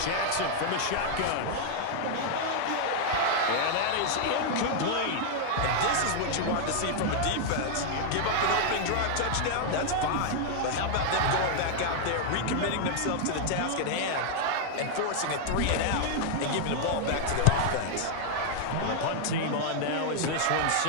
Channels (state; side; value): different; both; correlation 0.00